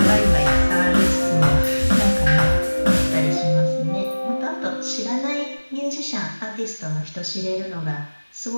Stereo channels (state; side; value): inverted; both; correlation -1.00